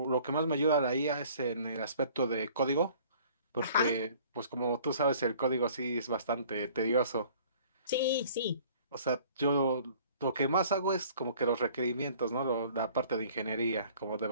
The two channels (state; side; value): inverted; both; correlation -0.53